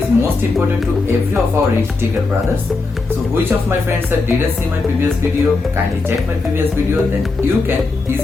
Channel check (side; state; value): right; quieter; 3.8 dB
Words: most important to every of our risk taker brothers. So which of my friends that didn't see my previous video, kindly check my previous video, then you can